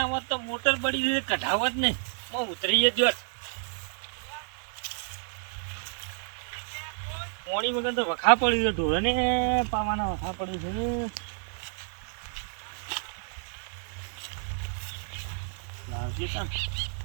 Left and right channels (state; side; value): silent; left; digital silence